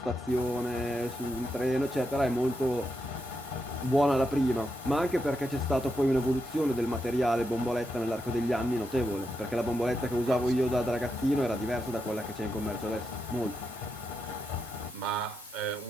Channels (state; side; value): normal; both; correlation 0.84